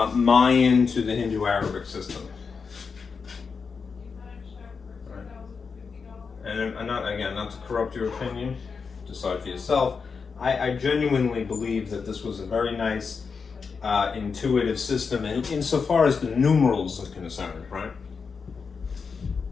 Mayan to the Hindu-Arabic system. Right. And I'm not, again, not to corrupt your opinion, decide for yourself. I genuinely believe that this was a very nice, intuitive system, and insofar as the numerals are concerned, right?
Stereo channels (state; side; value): quieter; right; 5.4 dB